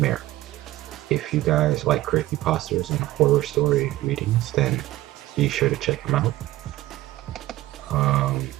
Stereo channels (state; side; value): quieter; left; 16.5 dB